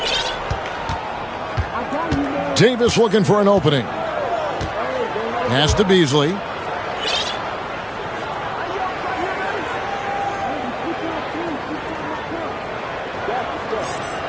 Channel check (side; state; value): both; identical; correlation 1.00